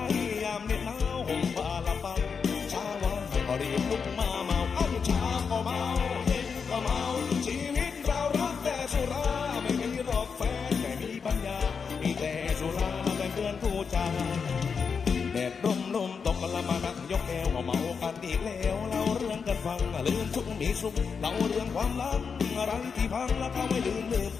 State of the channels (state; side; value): quieter; right; 5.9 dB